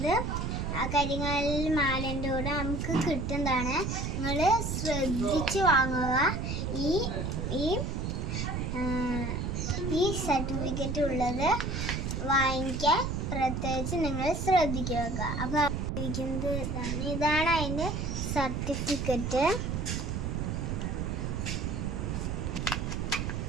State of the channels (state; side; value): noise; right; rumble, 2 dB below the sound